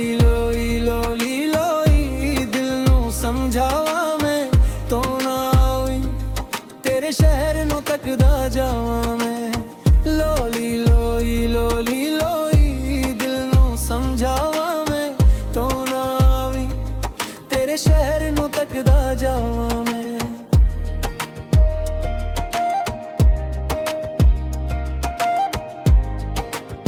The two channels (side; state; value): both; identical; correlation 1.00